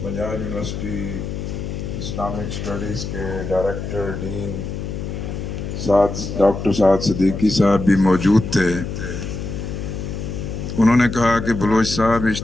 پنجاب یونیورسٹی اسلامک اسٹڈیز کے ڈائریکٹر ڈین ڈاکٹر سعد صدیقی صاحب بھی موجود تھے۔ انہوں نے کہا کہ بلوچ صاحب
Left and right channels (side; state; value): left; noise; hum, 6 dB below the sound